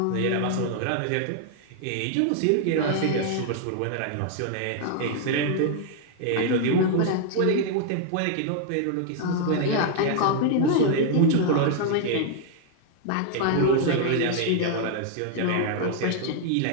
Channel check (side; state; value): both; different; correlation 0.00